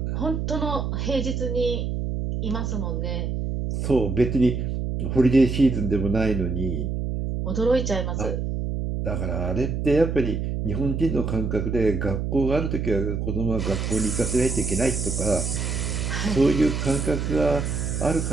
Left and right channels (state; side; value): noise; right; hum, 2 dB below the sound